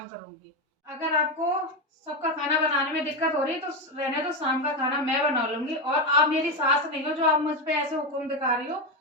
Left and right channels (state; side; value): normal; both; correlation 0.11